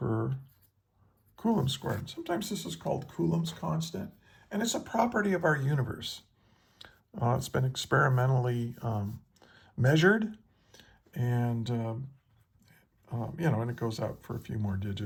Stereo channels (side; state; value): both; identical; correlation 1.00